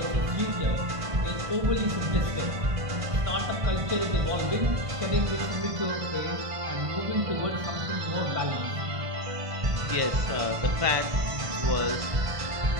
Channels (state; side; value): late; left; 1.5 ms